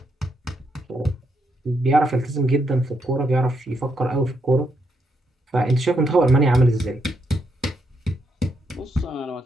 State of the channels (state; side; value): normal; both; correlation 0.79